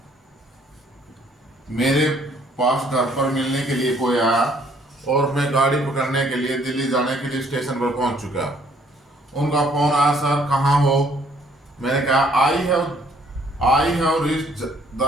मेरे पास घर पर मिलने के लिए कोई आया और मैं गाड़ी पकड़ने के लिए दिल्ली जाने के लिए स्टेशन पर पहुंच चुका। उनका फोन आया, सर कहाँ हो? मैंने कहा I have reached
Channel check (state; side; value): normal; both; correlation 0.63